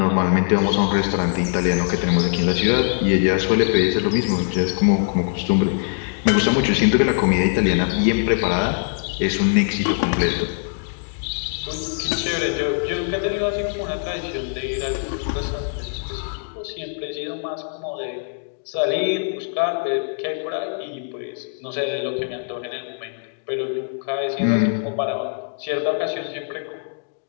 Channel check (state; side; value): silent; right; digital silence